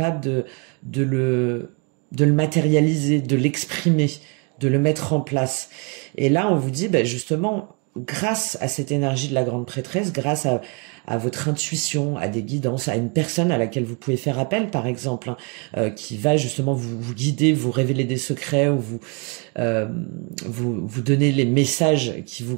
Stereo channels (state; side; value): quieter; left; 34.1 dB